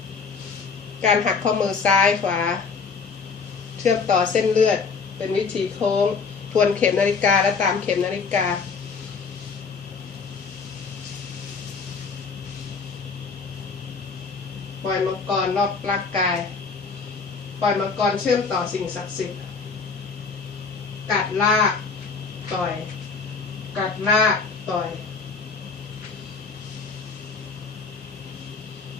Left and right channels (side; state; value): right; quieter; 5.0 dB